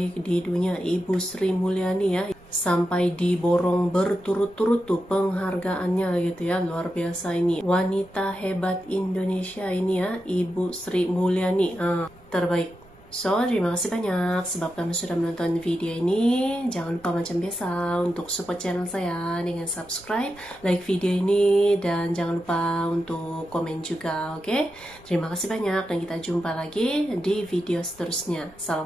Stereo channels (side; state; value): right; noise; rumble, 25 dB below the sound